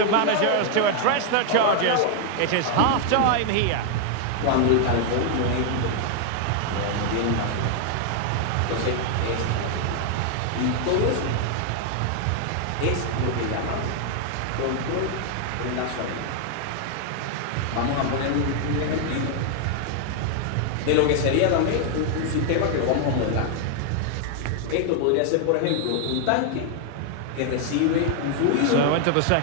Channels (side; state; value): both; different; correlation 0.00